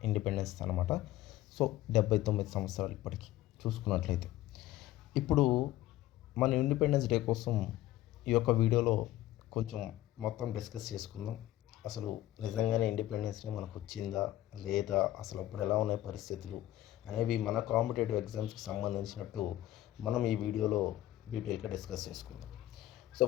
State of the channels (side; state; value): right; quieter; 14.7 dB